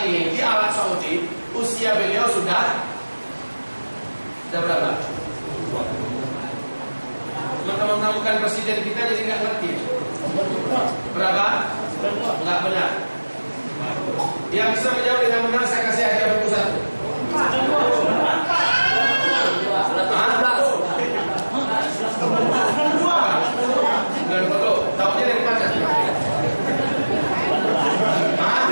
ini di Arab Saudi, usia beliau sudah berapa? Teman-teman bukan presiden kita jadi nggak ngerti. Berapa? Nggak benar. Yang bisa menjawab dengan benar saya kasih hadiah buku satu. Dan foto, tahunya dari mana?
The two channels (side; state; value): both; inverted; correlation -1.00